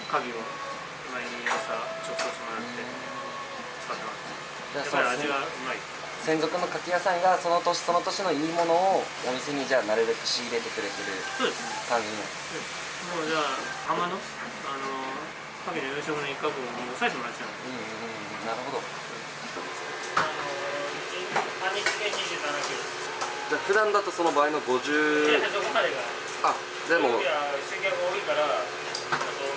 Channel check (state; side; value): identical; both; correlation 1.00